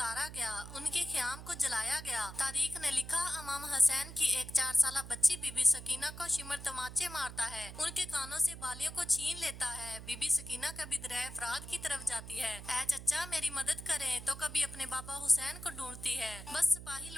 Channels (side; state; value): right; noise; hum, 12 dB below the sound